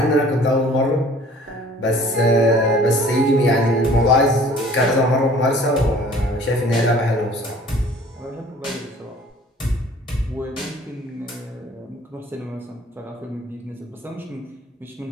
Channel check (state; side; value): normal; both; correlation 0.51